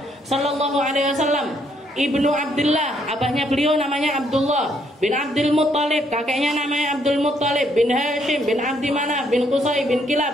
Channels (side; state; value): both; normal; correlation 0.70